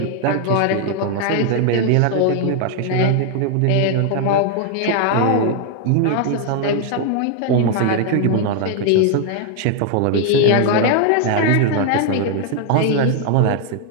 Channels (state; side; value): different; both; correlation 0.00